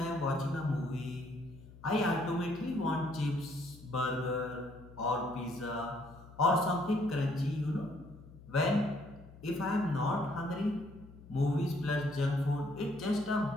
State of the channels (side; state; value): left; noise; hum, 19 dB below the sound